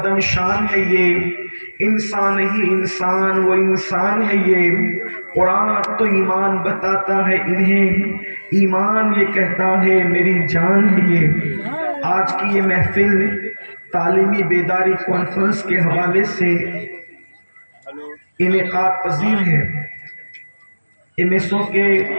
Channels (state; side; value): inverted; both; correlation -1.00